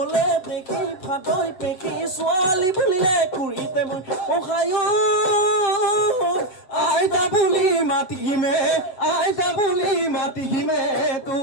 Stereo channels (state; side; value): late; right; 7.8 ms